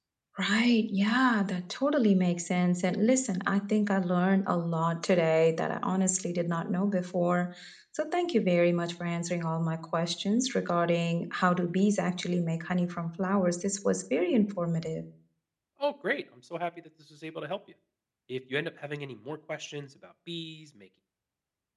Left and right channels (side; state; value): both; identical; correlation 1.00